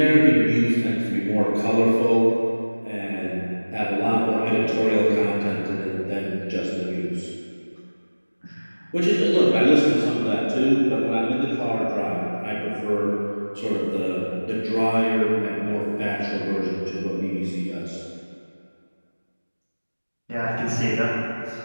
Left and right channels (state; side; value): inverted; both; correlation -1.00